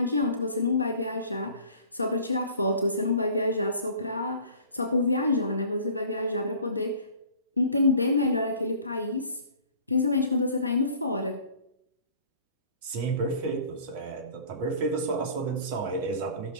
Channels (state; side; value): inverted; both; correlation -0.49